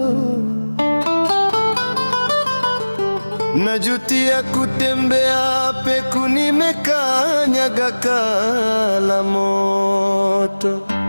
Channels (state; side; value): inverted; both; correlation -1.00